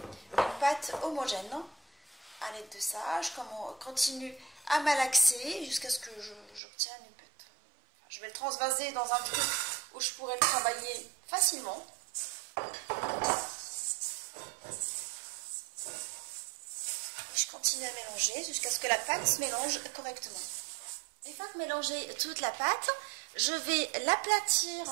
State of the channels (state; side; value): drops out; left; at 6.6 s